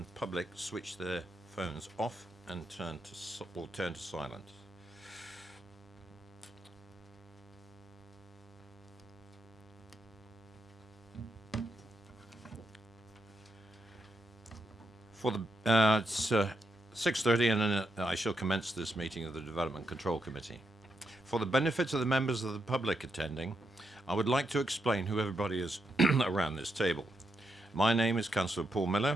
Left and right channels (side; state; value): both; normal; correlation 0.81